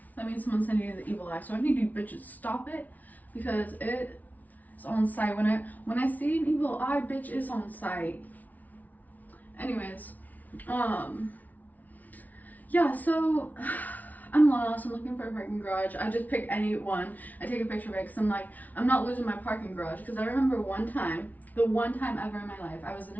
that means someone's sending you the evil eye. So I need you bitches stop it, because it is on site. When I see an evil eye, bitch, is on site. Anyways, yeah, so I'm lost. I'm looking for a parking garage. I just pick any one. I take a picture of it because I'm like, I'm not losing my parking garage. Because I remember one time, the one time ever in my life, I was in a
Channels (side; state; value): right; late; 0.076 ms